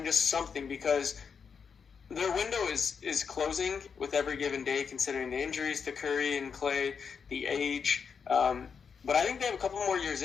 just something, because their window is closing with every given day, considering the injuries to Curry and Clay, the age. But I think they have a couple more years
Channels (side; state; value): right; quieter; 6.2 dB